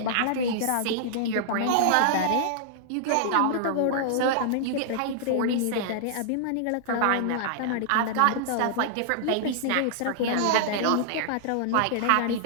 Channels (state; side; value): different; both; correlation -0.01